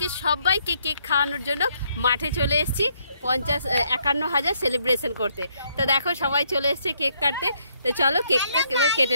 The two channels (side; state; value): both; inverted; correlation -0.72